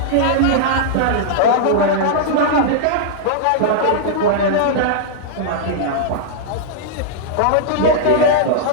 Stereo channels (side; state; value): both; different; correlation -0.02